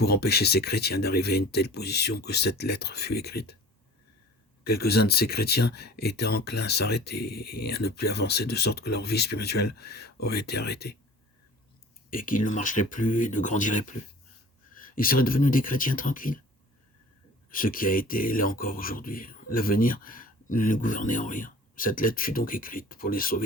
empêcher ces chrétiens d'arriver à une telle position que cette lettre fut écrite. Quelques-uns de ces chrétiens étaient enclins à s'arrêter et à ne plus avancer, de sorte que leur vie spirituelle aurait été arrêtée, et qu'ils ne marcheraient plus et ne grandiraient plus. Ils seraient devenus des chrétiens tranquilles. Ce qui a été l'est encore aujourd'hui. L'avenir ne les gouvernait en rien. Cette lettre fut donc écrite pour les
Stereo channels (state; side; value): normal; both; correlation 0.44